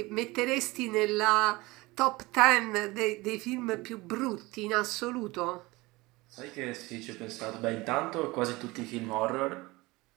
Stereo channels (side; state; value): left; quieter; 21.8 dB